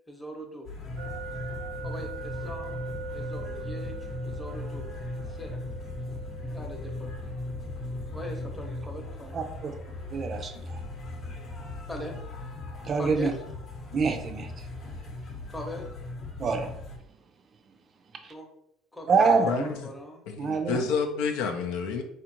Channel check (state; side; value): normal; both; correlation 0.64